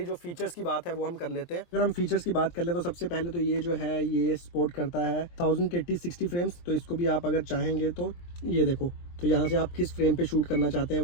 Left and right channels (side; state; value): right; late; 23 ms